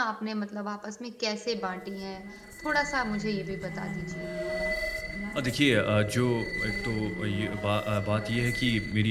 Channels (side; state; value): both; identical; correlation 1.00